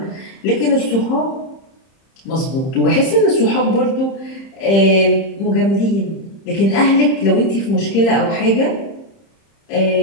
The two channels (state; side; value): late; right; 30 ms